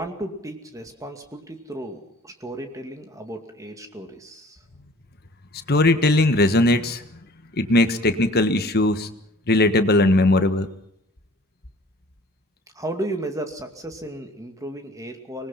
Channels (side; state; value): both; normal; correlation 0.51